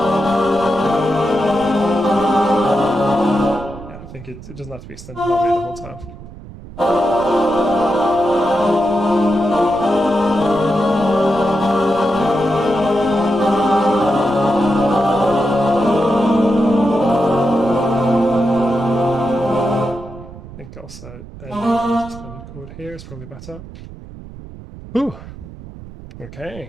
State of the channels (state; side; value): noise; right; rumble, 15 dB below the sound